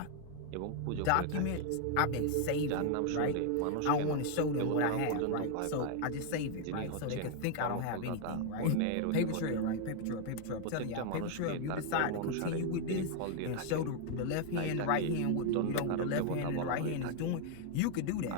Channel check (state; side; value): different; both; correlation 0.00